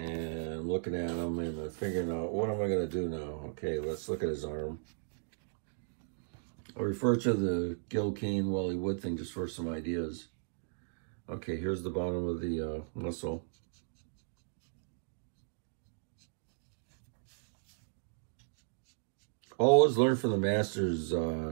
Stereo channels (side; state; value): left; silent; digital silence